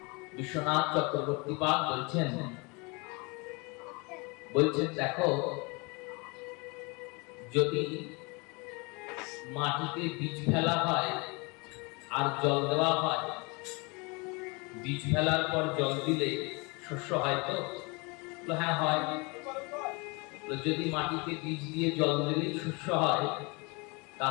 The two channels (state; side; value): quieter; right; 28.8 dB